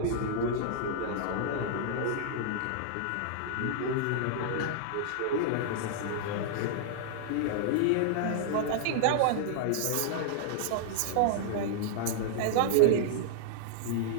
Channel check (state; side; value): different; both; correlation -0.01